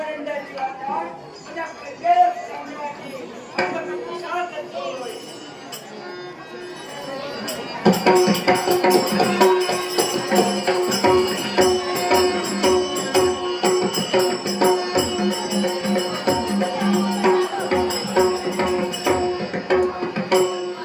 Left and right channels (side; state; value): both; identical; correlation 1.00